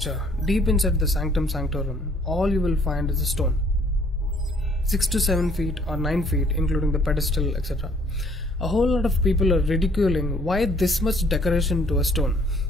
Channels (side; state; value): both; normal; correlation 0.61